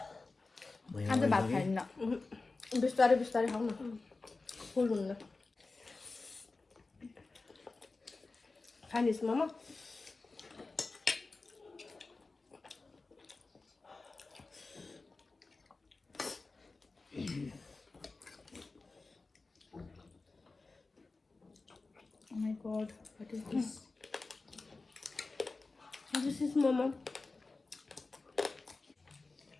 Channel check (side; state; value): right; quieter; 3.7 dB